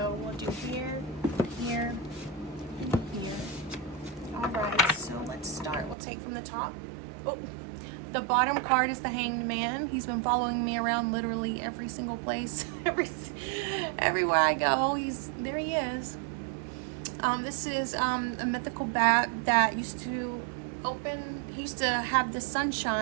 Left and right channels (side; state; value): left; drops out; at 6.0 s